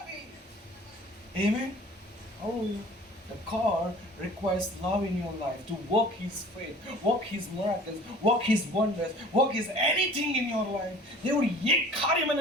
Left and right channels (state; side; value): normal; both; correlation 0.47